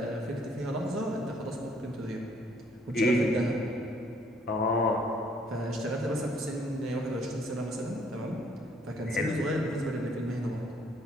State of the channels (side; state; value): both; normal; correlation 0.64